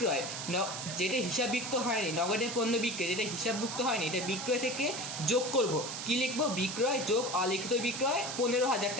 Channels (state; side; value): noise; right; hiss, 6 dB below the sound